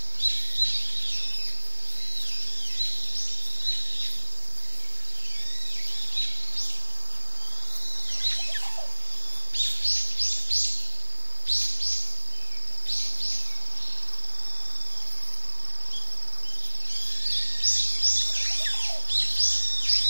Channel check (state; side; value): inverted; both; correlation -1.00